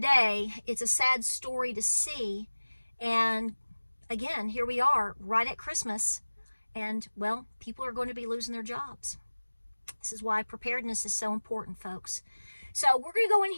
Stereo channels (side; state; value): both; inverted; correlation -1.00